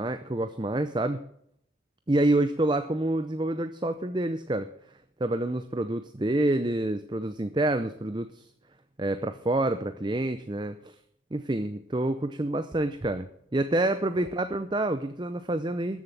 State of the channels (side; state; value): both; normal; correlation 0.68